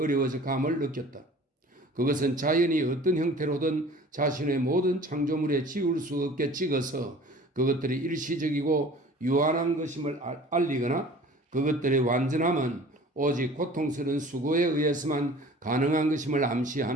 감을 느꼈다. 그것은 자연이 어떤 형태로든 자신의 모든 창조물에 지울 수 없게 찍어서 그것들이 일시적이고 유한한 것임을 알리거나 그것들의 완전함은 오직 고통스러운 수고에 의해서만 가능한 것임을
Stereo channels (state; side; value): normal; both; correlation 0.46